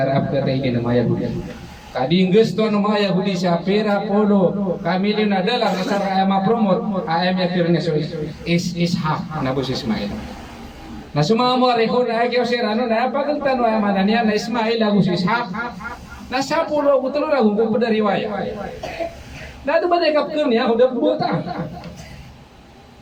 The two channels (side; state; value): both; identical; correlation 1.00